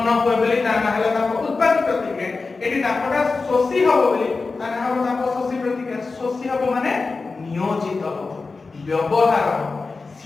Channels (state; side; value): quieter; right; 4.1 dB